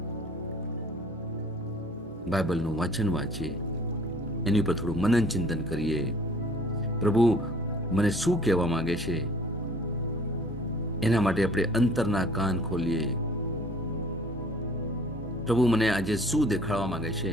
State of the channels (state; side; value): normal; both; correlation 0.53